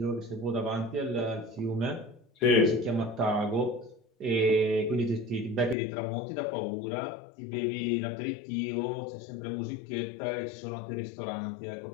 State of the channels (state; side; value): drops out; right; at 5.8 s